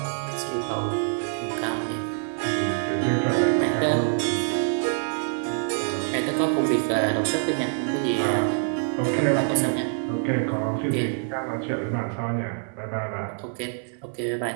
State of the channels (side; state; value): left; silent; 60 dB below the other